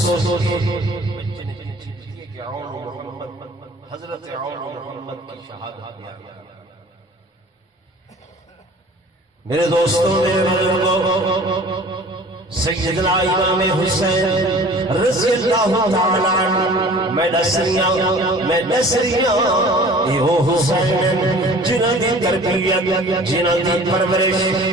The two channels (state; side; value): normal; both; correlation 0.46